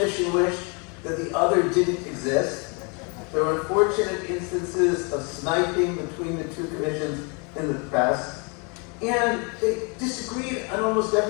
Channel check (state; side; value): quieter; right; 33.8 dB